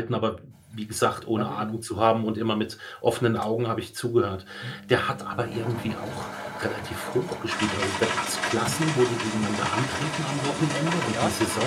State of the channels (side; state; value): both; identical; correlation 1.00